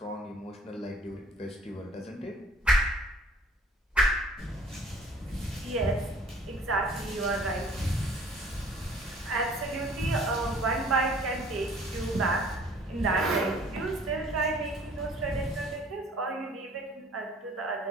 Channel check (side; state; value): both; normal; correlation 0.53